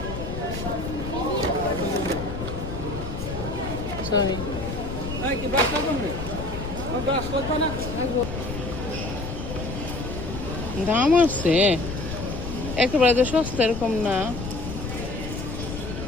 সরি, দাম আছে একেবারে তো সস্তা এরকম না,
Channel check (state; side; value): noise; left; rumble, 6 dB below the sound